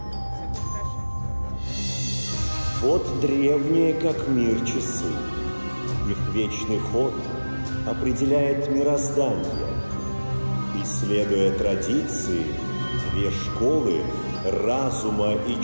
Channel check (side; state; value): both; inverted; correlation -1.00